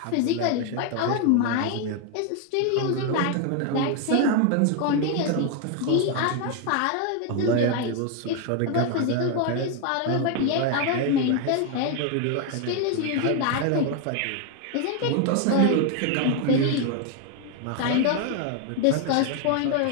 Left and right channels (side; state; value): both; different; correlation 0.01